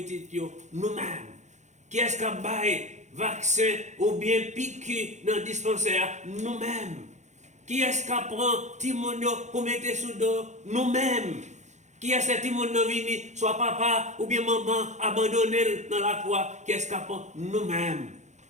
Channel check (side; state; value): left; late; 0.34 ms